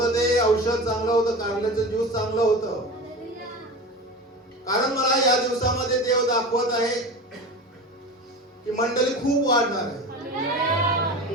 ते औषध चांगलं होतं, कारल्याचं ज्यूस चांगलं होतं. कारण मला या दिवसामध्ये देव दाखवत आहे की मंडळी खूप वाढणार आहे.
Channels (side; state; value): both; normal; correlation 0.30